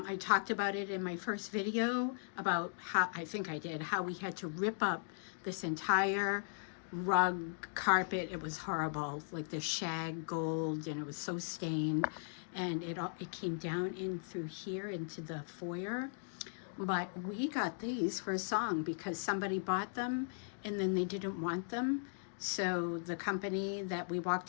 talked about it in my first video about how, I think I did, how we had to rip up this entire rug carpet. It was horrible, like the shag gold, and it was so stained, and it came down in through here into the foyer. But we got these for a song because somebody bought them and then they didn't want them. So the company that we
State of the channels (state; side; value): silent; right; digital silence